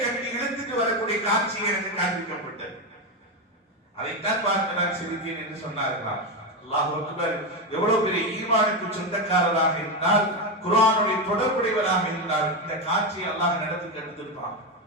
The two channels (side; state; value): both; normal; correlation 0.11